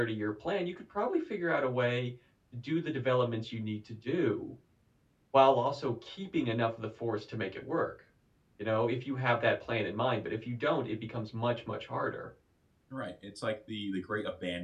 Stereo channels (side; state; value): both; identical; correlation 1.00